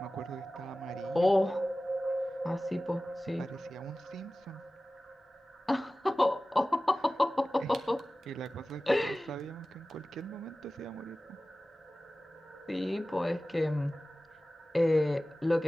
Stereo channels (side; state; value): both; normal; correlation 0.96